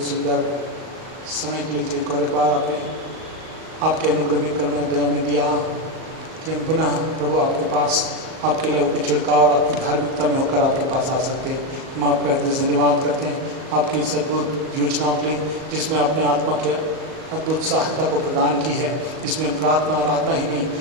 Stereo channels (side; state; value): left; late; 38 ms